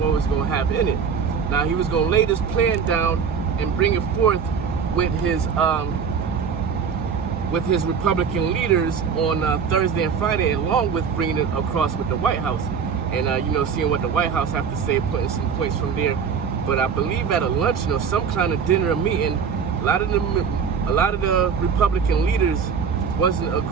was going to have in it. Now, he was going to lay this plan down and bring it forth with his Republican leaders on Thursday and Friday, along with bringing it across with the White House and seeing what the White House have to say, putting some points from there. But I believe at a luncheon or some kind of dinner or meeting, a lot of the Republican leaders wasn't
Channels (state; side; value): quieter; left; 6.5 dB